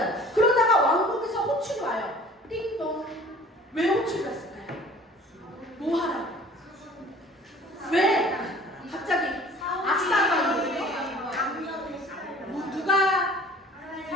그러다가 왕국에서 호출이 와요. 띵동. 왜 호출이 왔을까요? 뭐 하라고? 왜? 갑자기 악사가 누가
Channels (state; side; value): normal; both; correlation 0.48